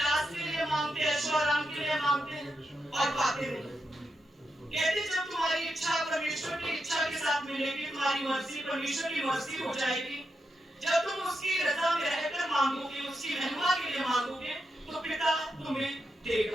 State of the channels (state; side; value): normal; both; correlation 0.85